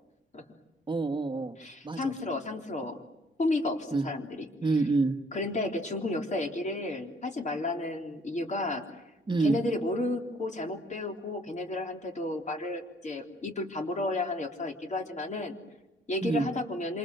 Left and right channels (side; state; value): both; normal; correlation 0.61